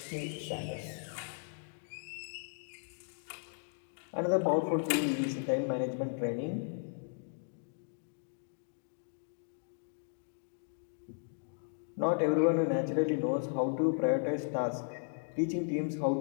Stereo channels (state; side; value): silent; right; digital silence